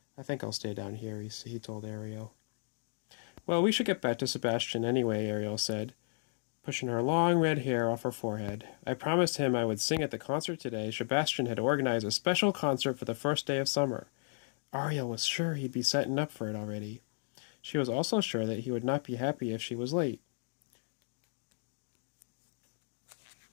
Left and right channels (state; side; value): silent; right; digital silence